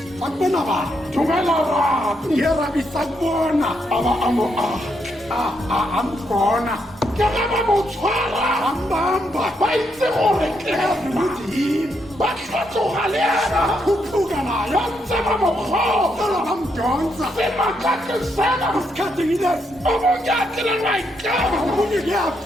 akubona bani dumela rabi yerabi sakubona a ba a mo aga ambona ke ge ba mo tshwara ambamba ba itse gore ke ukuthi yini ba tlhatloga le ena khuphuka nayo ba ntse ba mo kgotsa sala bamdonsa semakake sena isikhathini lesi o monyakile maikemo omunye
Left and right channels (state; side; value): normal; both; correlation 0.78